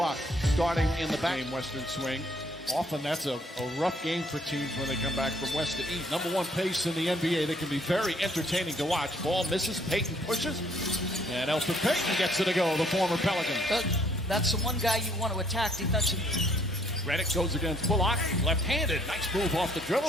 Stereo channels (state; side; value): normal; both; correlation 0.65